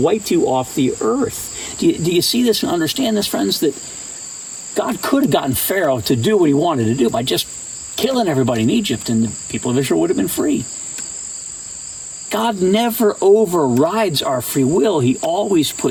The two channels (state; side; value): identical; both; correlation 1.00